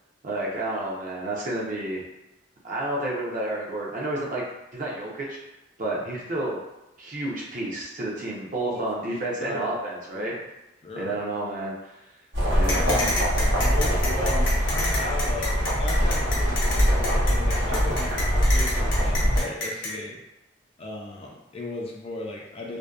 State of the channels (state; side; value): normal; both; correlation 0.64